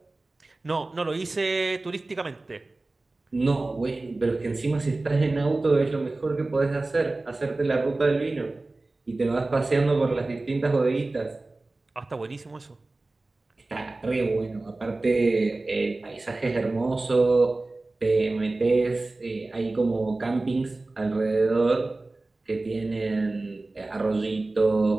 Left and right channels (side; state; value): left; quieter; 3.1 dB